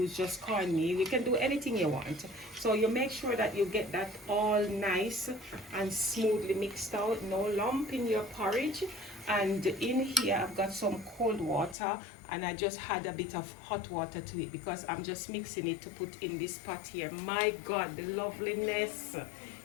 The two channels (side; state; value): right; drops out; at 11.8 s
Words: just cornmeal. You can do anything you want. So you make sure that you get that all nice and smoothly mixed out. No lump in your porridge. And in here, I've got some cold water, and I just had a bit of hot water to it because I'm just mixing it to put in this pot here. My God, the loveliness,